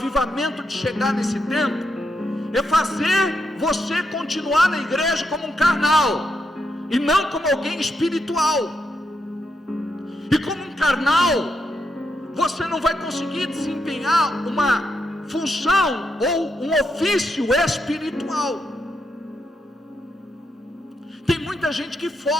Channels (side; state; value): both; normal; correlation 0.82